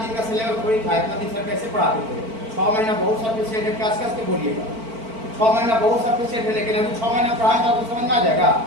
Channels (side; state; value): left; late; 4.5 ms